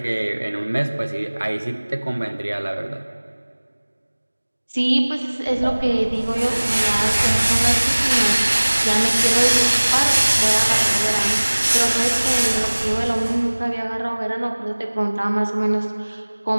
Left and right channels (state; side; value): inverted; both; correlation -1.00